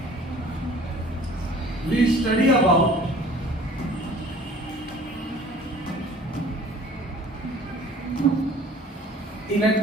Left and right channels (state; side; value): normal; both; correlation 0.50